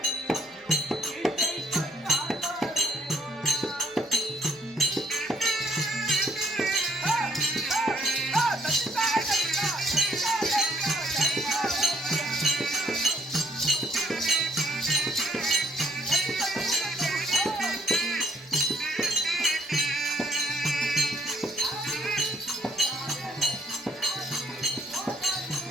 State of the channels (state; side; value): noise; left; hum, 29 dB below the sound